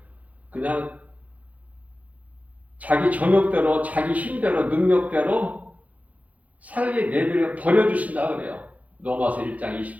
그냥 자기 정욕대로, 자기 힘대로, 능력대로 살게 내버려 버려주신다 그래요. 로마서 1장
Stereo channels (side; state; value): left; late; 0.072 ms